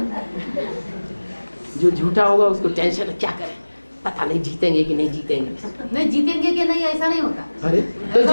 जो झूठा होगा उसको टेंशन, क्या करें पता नहीं जीतेंगे कि नहीं जीतेंगे। नहीं जीतेंगे कि नहीं ऐसा नहीं होता। अरे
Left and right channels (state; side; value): inverted; both; correlation -1.00